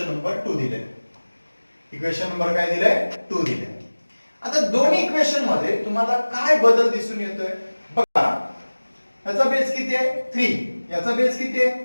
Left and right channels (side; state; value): both; inverted; correlation -1.00